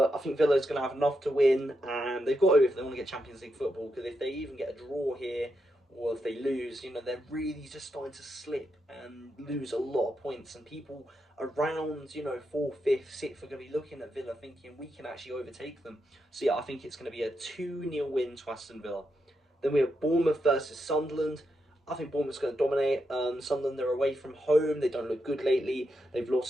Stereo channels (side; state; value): both; normal; correlation 0.84